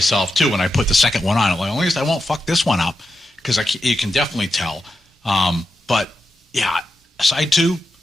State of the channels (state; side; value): normal; both; correlation 0.88